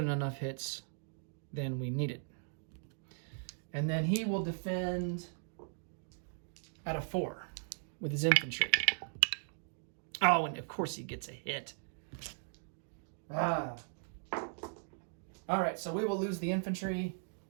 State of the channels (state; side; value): silent; left; digital silence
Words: enough hits than we needed. And then he will defend at a 4 with his infantry. Oh, and of course he gets a hit. All right, so we will lose the infantry.